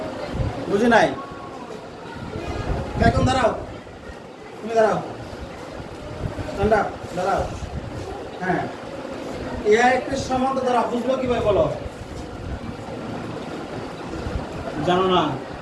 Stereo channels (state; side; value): identical; both; correlation 1.00